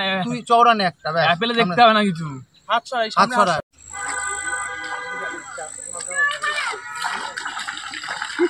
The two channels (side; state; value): both; identical; correlation 1.00